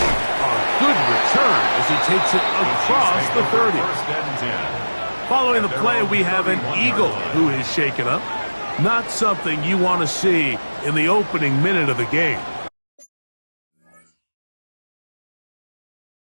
A good return as he takes it across the 30. Following the play, we have an Eagle who is shaken up. Not something you want to see in the opening minute of the game.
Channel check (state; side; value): inverted; both; correlation -1.00